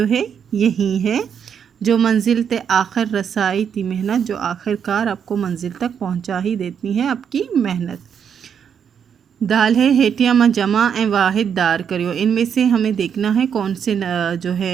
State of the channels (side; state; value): left; quieter; 7.7 dB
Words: है यही है। जो मंजिल ते आखिर रसाई ती मेहनत, जो आखिरकार आपको मंजिल तक पहुंचा ही देती है आपकी मेहनत। दाल है हेटिया में जमा ए वाहिद दार करियो, इनमें से हमें देखना है कौन से जो